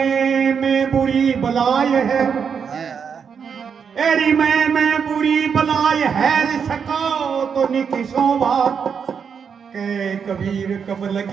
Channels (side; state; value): left; quieter; 6.7 dB